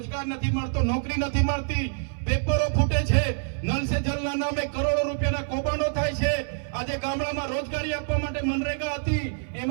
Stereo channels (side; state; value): left; silent; 56 dB below the other